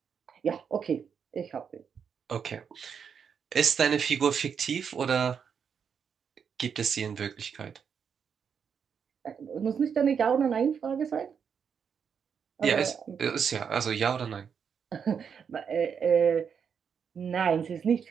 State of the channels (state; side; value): quieter; left; 7.0 dB